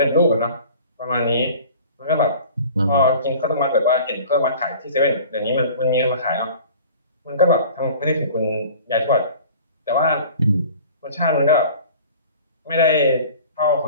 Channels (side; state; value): both; inverted; correlation -0.44